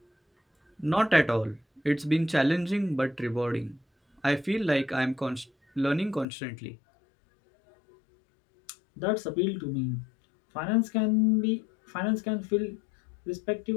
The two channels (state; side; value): drops out; right; at 6.2 s